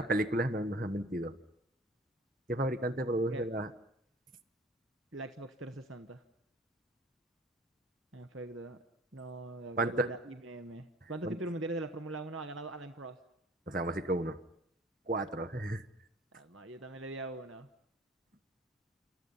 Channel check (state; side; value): normal; both; correlation 0.49